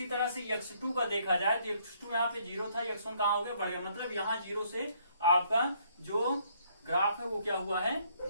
तरह से x2 का देखा जाए तो x2 यहाँ पे 0 था, x1 कहाँ हो गया, बढ़ गया। मतलब यहाँ 0 से आपका जो ग्राफ है वो क्या हुआ है,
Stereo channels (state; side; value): inverted; both; correlation -0.67